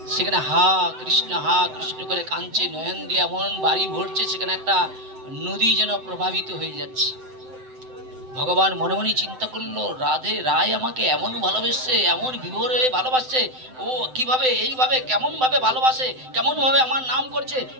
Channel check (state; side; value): late; left; 7.8 ms